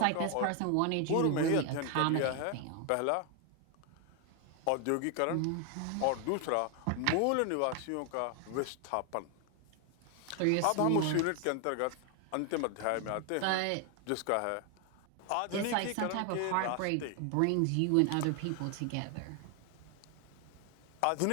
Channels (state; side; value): different; both; correlation 0.01